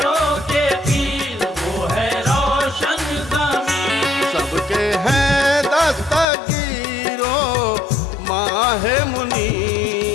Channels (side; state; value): right; drops out; at 6.2 s